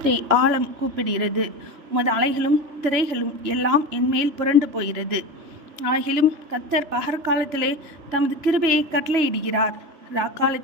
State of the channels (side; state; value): left; late; 2.9 ms